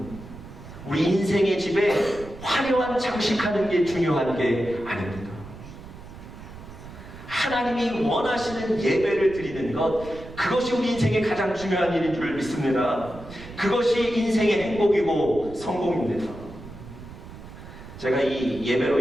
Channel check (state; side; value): noise; right; rumble, 15 dB below the sound